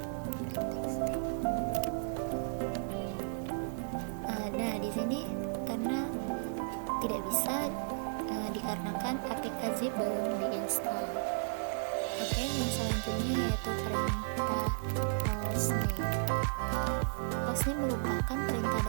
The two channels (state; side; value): silent; left; digital silence